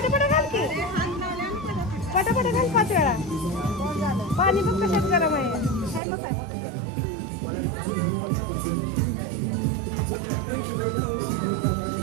घाल की पटापटा घाल 5 वेळा पाणी पण कशात गरम आहे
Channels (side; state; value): left; drops out; at 6.0 s